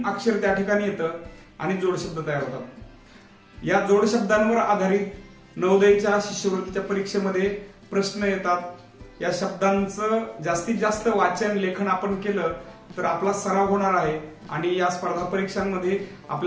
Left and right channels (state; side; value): identical; both; correlation 1.00